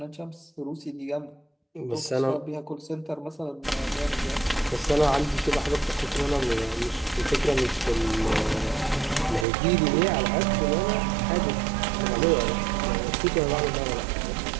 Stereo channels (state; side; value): drops out; left; at 9.5 s